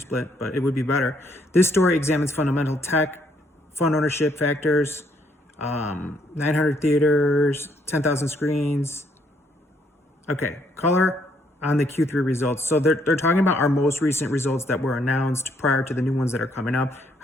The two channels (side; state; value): both; normal; correlation 0.70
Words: but it would be better. This story examines fundamental tech, fund ownership factors, 900 theaters, 10,000 screens. Okay, color on the Q3 results. So they're talking about our most recent results that were announced prior to the new ones that are coming up.